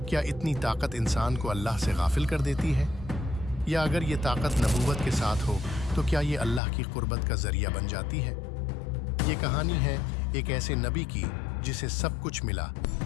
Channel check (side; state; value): right; drops out; at 6.6 s